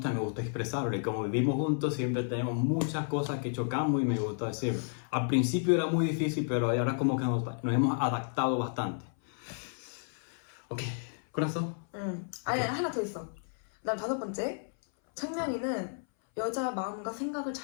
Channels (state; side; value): silent; right; 57 dB below the other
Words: expresarlo. Y como vivimos juntos, siempre tenemos muchas cosas que chocamos y me gusta decirlo. Al principio era muy difícil, pero ahora como que nos hemos adaptado bastante. Ok, corazón. 아니, 하나 더 있어. 그다음 다섯 번째, 창명이는 여자 마음과 생각을